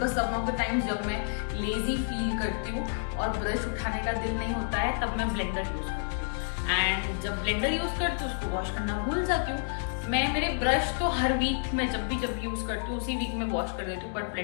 some of the times जब मैं लेजी फील करती हूँ और ब्रश उठाने का दिल नहीं होता है तब मैं ब्लेंडर यूज करती हूँ एंड जब ब्लेंडर यूज करती हूँ उसको वॉश करना भूल जाती हूँ। मैं मेरे ब्रश तो हर वीक में जब भी यूज करती हूँ उसी वीक में वॉश कर देती हूँ, बट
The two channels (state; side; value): silent; right; digital silence